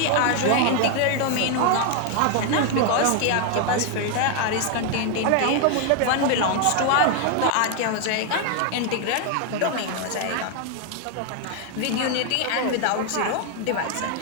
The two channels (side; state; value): both; different; correlation 0.00